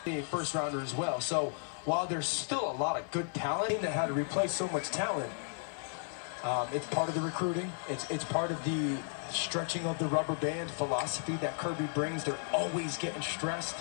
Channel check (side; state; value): right; silent; 55 dB below the other